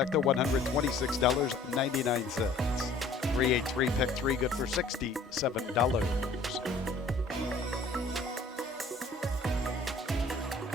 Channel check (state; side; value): quieter; right; 3.2 dB